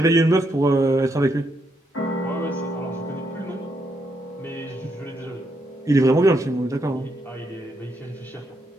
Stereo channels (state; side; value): normal; both; correlation 0.78